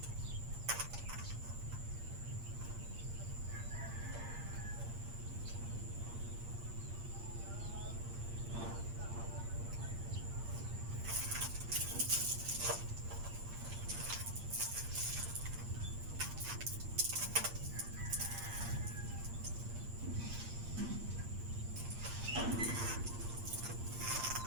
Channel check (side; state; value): left; late; 8.6 ms